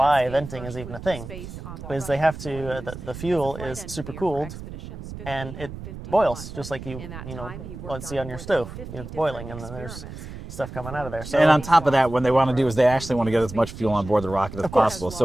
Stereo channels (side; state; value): right; noise; rumble, 11 dB below the sound